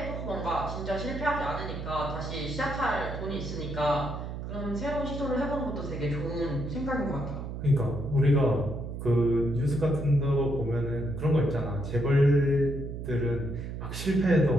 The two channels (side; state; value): right; noise; hum, 7 dB below the sound